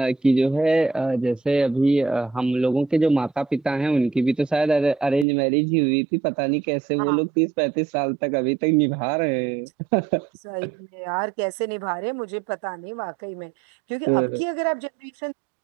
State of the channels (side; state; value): left; drops out; at 5.2 s